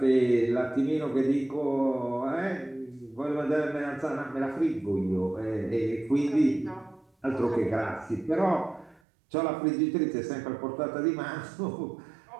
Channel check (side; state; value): left; drops out; at 9.0 s